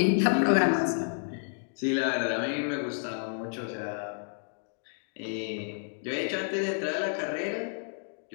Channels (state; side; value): silent; right; digital silence